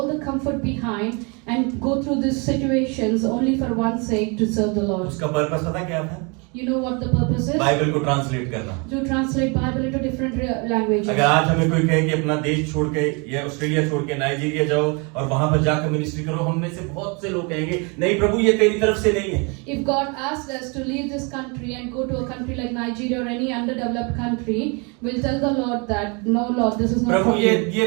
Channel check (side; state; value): left; quieter; 31.8 dB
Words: the comfort behind and go through these situations only for one sake, to serve the Lord. उसका purpose पता क्या था? You know what the purpose is? Bible को translate करना। To translate Bible into different languages. अगर आज हमें कोई कहे कि अपना देश छोड़ के या ऑस्ट्रेलिया छोड़ के नाइजीरिया जाओ और वहां पर जाकर मिनिस्ट्री करो, हम में से बहुत से लोग कहेंगे नहीं प्रभु ये तेरी तरफ से नहीं है। If God asked us to leave this country and go to a country like Nigeria or any underdeveloped country, we'll tell the Lord that no Lord, this is not Prabhu from ये